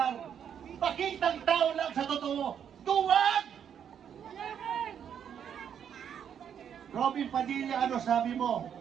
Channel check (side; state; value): left; quieter; 8.5 dB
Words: Pakitang tao lang sa totoo. Duwag! Robin Padilla, ano sabi mo?